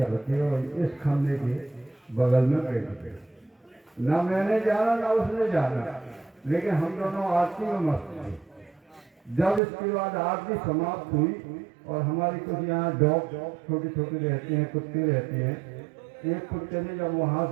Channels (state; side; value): drops out; left; at 9.6 s